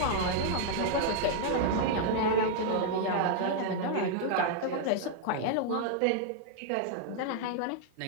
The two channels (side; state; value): both; different; correlation -0.01